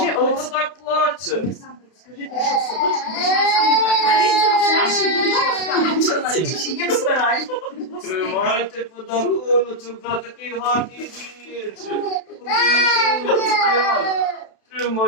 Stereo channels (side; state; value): right; late; 32 ms